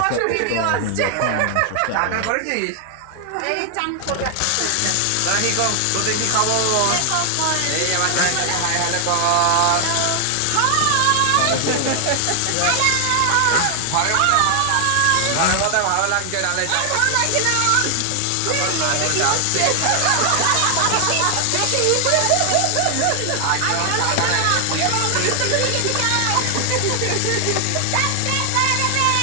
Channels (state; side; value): different; both; correlation 0.00